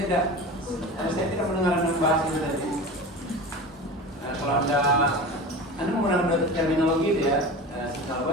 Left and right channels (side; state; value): both; normal; correlation 0.32